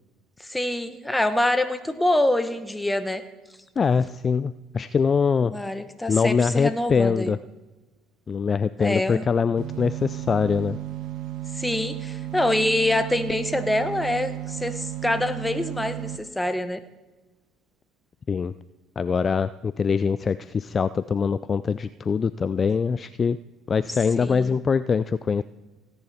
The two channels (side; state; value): right; quieter; 3.3 dB